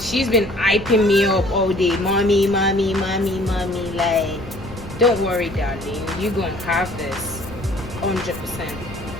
been hyping me up all day. Mommy. Like, don't worry, darling. You're gonna have this 100%.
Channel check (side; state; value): left; noise; rumble, 15 dB below the sound